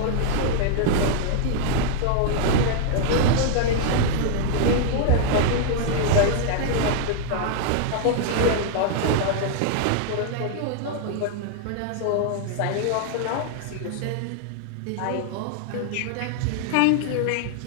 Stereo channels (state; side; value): different; both; correlation 0.00